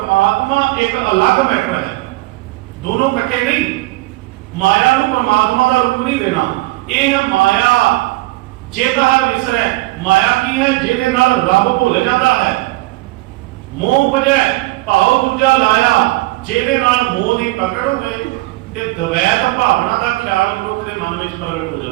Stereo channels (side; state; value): left; quieter; 20.7 dB